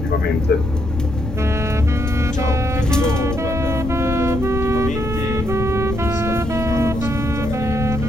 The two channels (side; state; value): left; noise; rumble, 7 dB below the sound